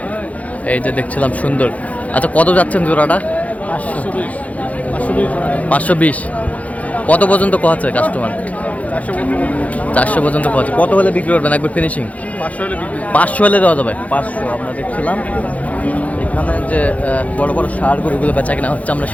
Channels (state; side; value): late; right; 0.069 ms